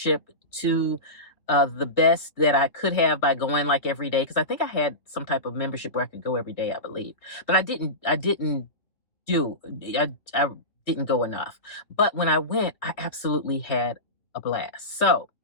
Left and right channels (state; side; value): late; right; 2.9 ms